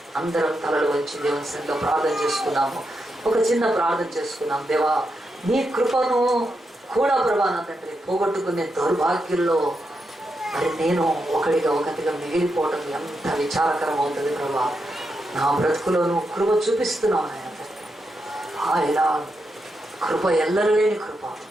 అందరం తలలు వంచి దేవుని సన్నిధిలో ప్రార్థన చేసుకున్నాము. ఒక చిన్న ప్రార్థన చేసుకున్నాం. దేవా, నీ కృపను కూడా ప్రభా నా తండ్రి పోగొట్టుకునే దౌర్భాగ్యంలో మరి నేను ఒకటిగా మిగిలిపోవడం ఎంత విచారకరం అవుతుంది ప్రభా. నా బ్రతుకులోను కృప చూపిస్తున్నావు ఆయన. ఆయన కృప ఎల్లలేని కృప,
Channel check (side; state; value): both; normal; correlation 0.84